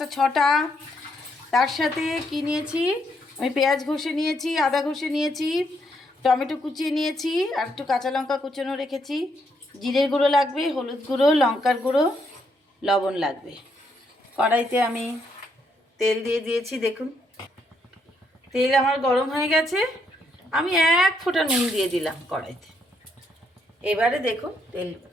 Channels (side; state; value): both; normal; correlation 0.75